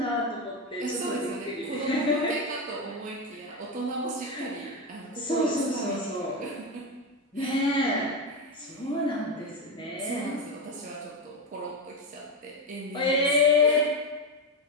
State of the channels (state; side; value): normal; both; correlation 0.14